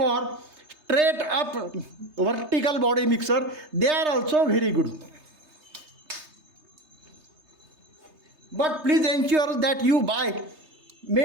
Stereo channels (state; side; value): late; left; 3.3 ms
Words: straight up vertical body mixer. They are also very good. But please ensure that you buy